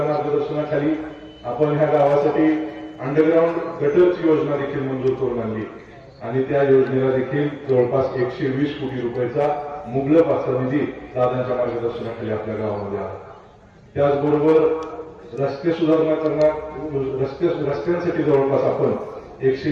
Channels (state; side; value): identical; both; correlation 1.00